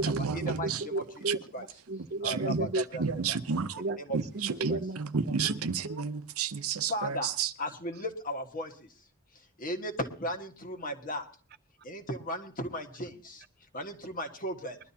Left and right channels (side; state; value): left; quieter; 3.0 dB